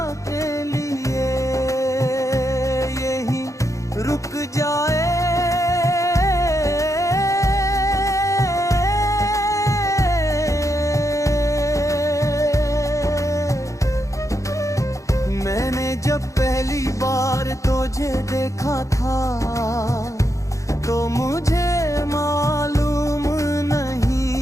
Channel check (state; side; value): late; right; 0.15 ms